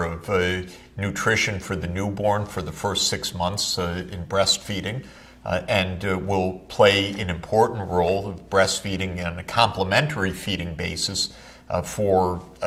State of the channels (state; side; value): identical; both; correlation 1.00